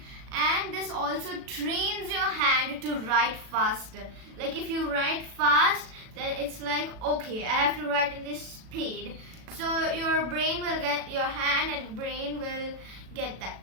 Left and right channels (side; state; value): left; late; 37 ms